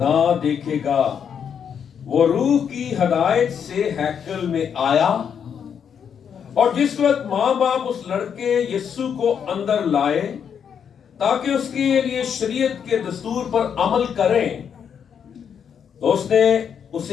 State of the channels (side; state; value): right; quieter; 7.7 dB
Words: دیکھے گا۔ وہ روح کی ہدایت سے ہیکل میں آیا، اور جس وقت ماں باپ اس لڑکے یسوع کو اندر لائے تاکہ اس کے لیے شریعت کے دستور پر عمل کریں، تو اس نے